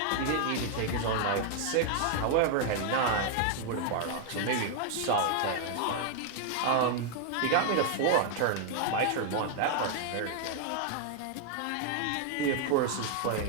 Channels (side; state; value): both; different; correlation 0.00